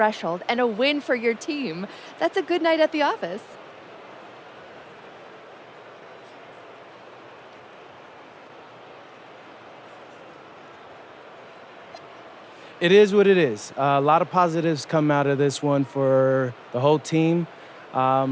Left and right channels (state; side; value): identical; both; correlation 1.00